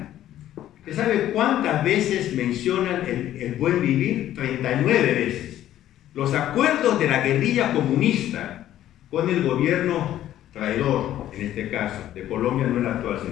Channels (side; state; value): right; quieter; 12.5 dB